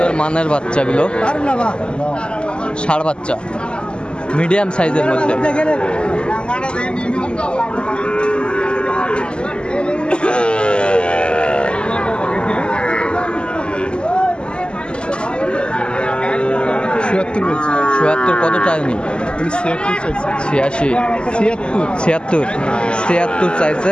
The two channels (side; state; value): right; late; 0.050 ms